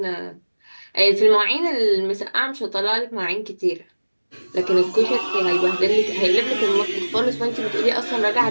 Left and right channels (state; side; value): inverted; both; correlation -1.00